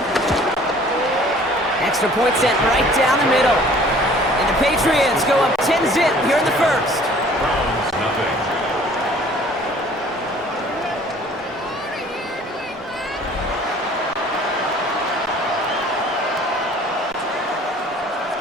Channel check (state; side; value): normal; both; correlation 0.52